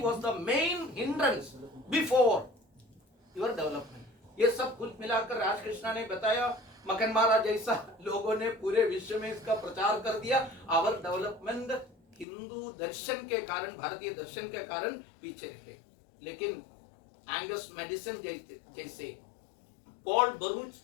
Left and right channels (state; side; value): drops out; right; at 12.2 s